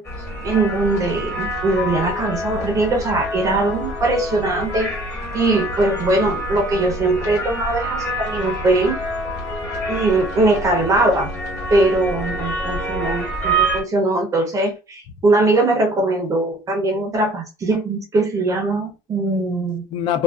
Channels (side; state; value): both; normal; correlation 0.54